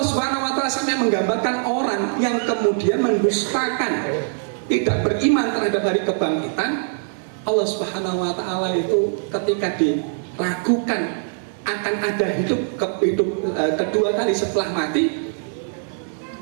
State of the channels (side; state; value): left; silent; 63 dB below the other